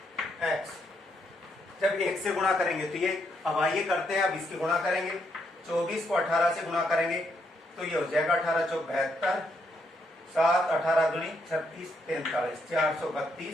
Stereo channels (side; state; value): both; normal; correlation 0.76